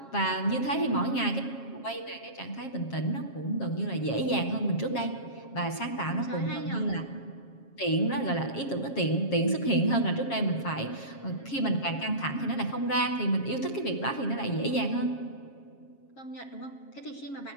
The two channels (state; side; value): late; right; 7.4 ms